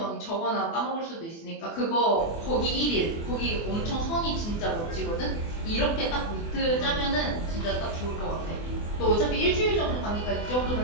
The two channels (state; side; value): late; right; 24 ms